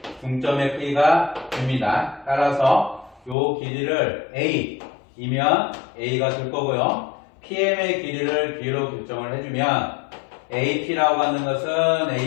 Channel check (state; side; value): drops out; right; at 3.4 s